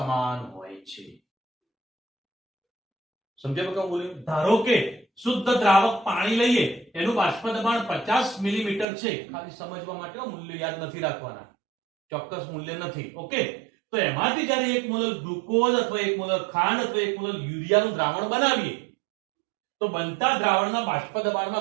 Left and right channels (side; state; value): left; drops out; at 8.8 s